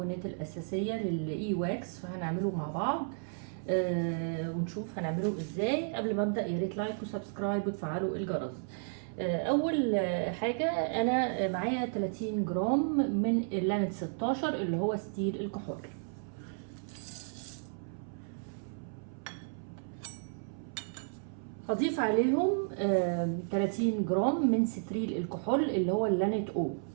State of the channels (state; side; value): silent; left; 56 dB below the other